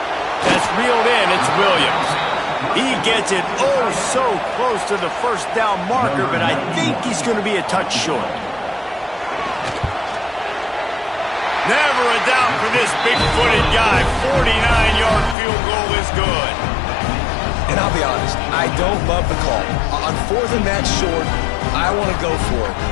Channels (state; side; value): drops out; right; at 15.4 s